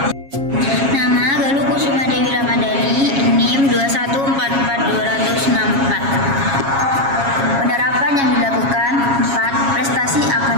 Nama Galuh Kusuma Dewi Ramadhani, NIM 2144264. Penerapan yang dilakukan. 4. Prestasi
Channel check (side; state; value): left; late; 7.3 ms